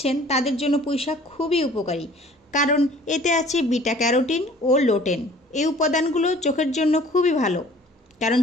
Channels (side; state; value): both; normal; correlation 0.51